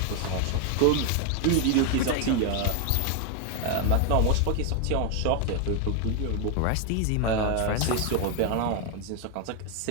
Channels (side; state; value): both; different; correlation 0.01